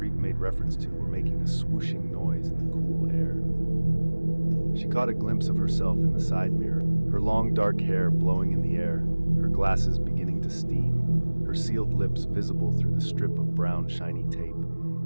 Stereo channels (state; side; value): inverted; both; correlation -1.00